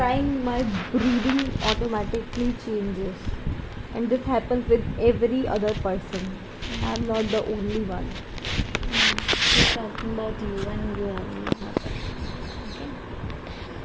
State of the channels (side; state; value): both; identical; correlation 1.00